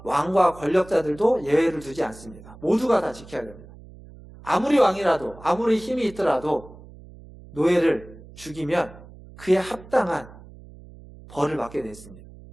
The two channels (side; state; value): right; noise; hum, 19 dB below the sound